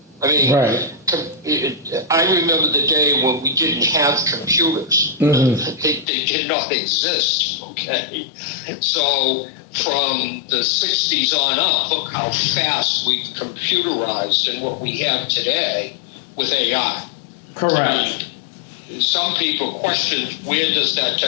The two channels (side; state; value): right; drops out; at 6.1 s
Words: I mean, right. I remember the day when we didn't have computers. Mm-hmm. They did not exist, okay? So from the 60s on up, look how fast we've computerized and what we have today with AI. Correct. I mean, some people question, where does that